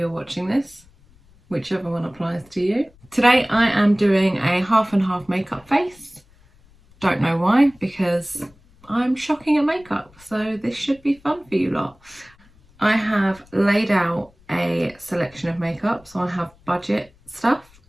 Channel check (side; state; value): left; noise; rumble, 29 dB below the sound